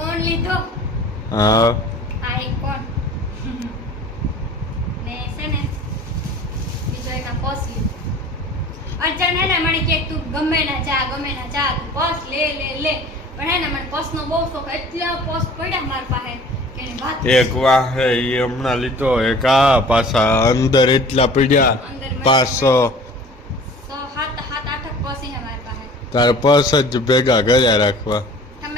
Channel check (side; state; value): both; normal; correlation 0.45